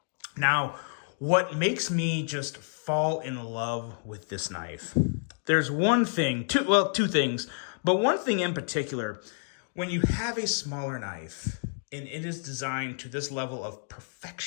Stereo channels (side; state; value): right; silent; digital silence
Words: Now, what makes me just fall in love with this knife? There's one thing, two things, but one thing in particular. When you have a smaller knife and it is designed to this level of